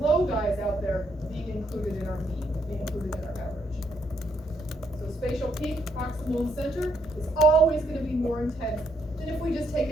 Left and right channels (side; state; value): both; normal; correlation 0.74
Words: guys out there being included in our beam, being included in our average. So spatial peak, proximal and center, is always going to be more intense than if we just take